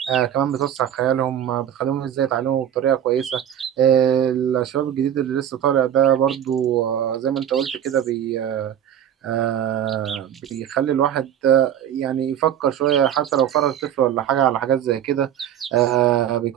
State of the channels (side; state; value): left; quieter; 10.2 dB